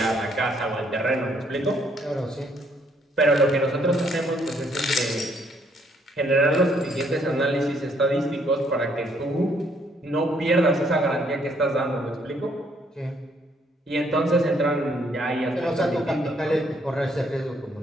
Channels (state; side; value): normal; both; correlation 0.68